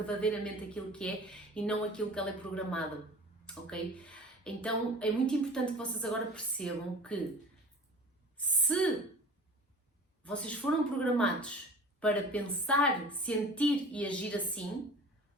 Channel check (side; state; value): both; normal; correlation 0.41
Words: aquilo que é e não aquilo que ela é programada, ok? Então é muito importante que vocês agora percebam que se vocês foram programados para pensar, sentir e agir assim,